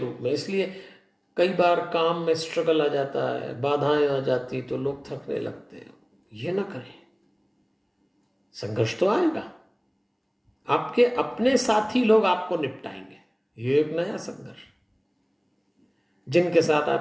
में। इसलिए कई बार काम में स्ट्रगल आ जाता है, बाधाएं आ जाती, तो लोग थकने लगते हैं। ये ना करें, संघर्ष तो आएगा, आपके अपने साथी लोग आपको निपटाएंगे। ये एक नया संघर्ष। जिनके साथ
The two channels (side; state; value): both; identical; correlation 1.00